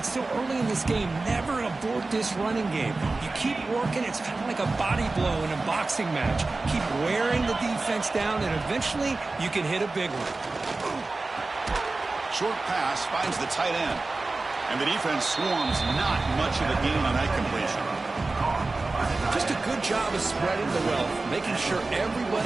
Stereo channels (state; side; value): quieter; left; 3.4 dB